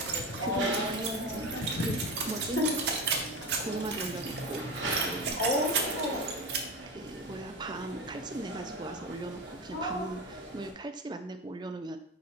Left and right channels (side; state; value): both; normal; correlation 0.23